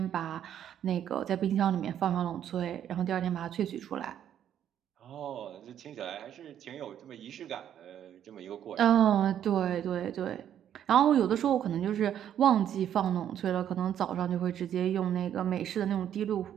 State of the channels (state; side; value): quieter; left; 10.0 dB